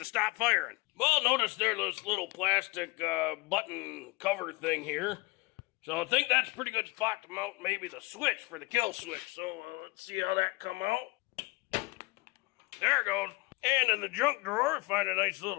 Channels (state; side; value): quieter; right; 24.9 dB